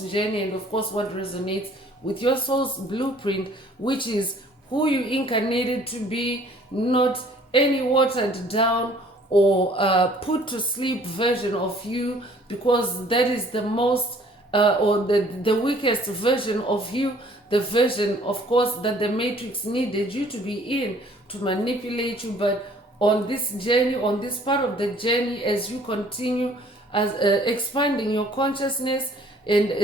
journey, and of course, what resonates with your soul's blueprint, which is who you incarnated to be, not any watered down or put to sleep version of you, because that is the most or the weakest version of you, the version, of course, that the matrix needed you to be in to manipulate you. But on this journey, on this part of the journey, as you continue as expanding your consciousness, and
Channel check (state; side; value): normal; both; correlation 0.56